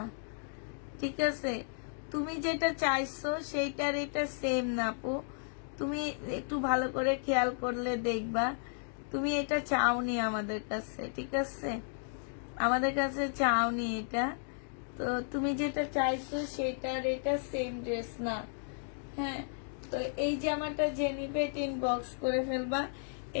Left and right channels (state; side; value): silent; right; digital silence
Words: ঠিক আছে? তুমি যেটা চাইছো সেইটার এটা সেম না আপু। তুমি একটু ভালো করে খেয়াল করলে দেখবা, তুমি এটা চাওনি আমাদের কাছে, ঠিক আছে? আমাদের কাছে চাওনি এটা। তো তুমি যেটা চাইছো সেটার এটা সেম ড্রেস না। হ্যাঁ, তো এই জামাটা যে নিবে ইনবক্স করে ফেলবা।